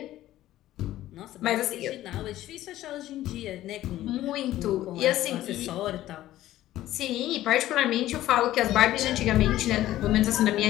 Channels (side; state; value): right; quieter; 14.4 dB